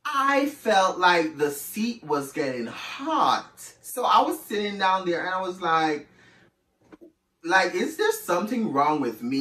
I felt like the seat was getting hot. So I was sitting down there and I was like, is there something wrong with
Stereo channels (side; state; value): both; identical; correlation 1.00